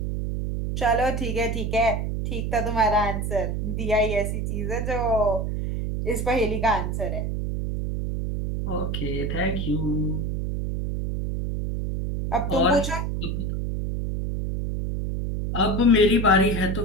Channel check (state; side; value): noise; right; hum, 2 dB below the sound